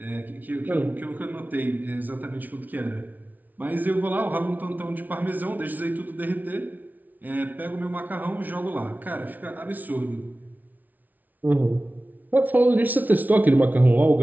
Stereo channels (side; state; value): left; late; 0.079 ms